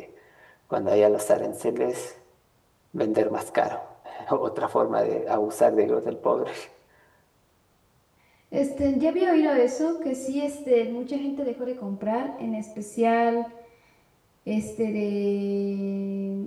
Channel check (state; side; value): identical; both; correlation 1.00